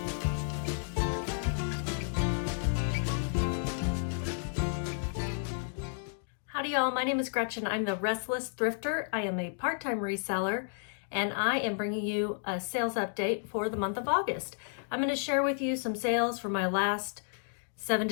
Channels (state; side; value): silent; right; digital silence